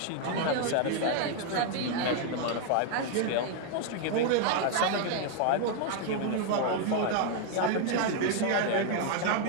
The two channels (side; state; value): both; different; correlation 0.00